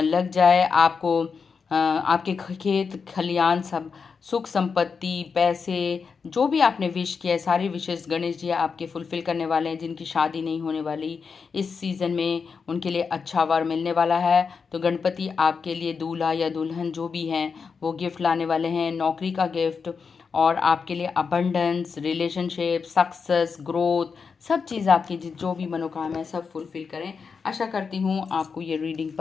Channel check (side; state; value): right; quieter; 5.5 dB